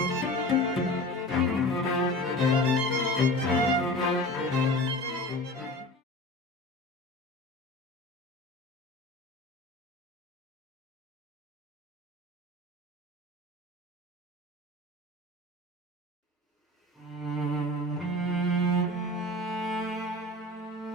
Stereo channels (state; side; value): normal; both; correlation 0.35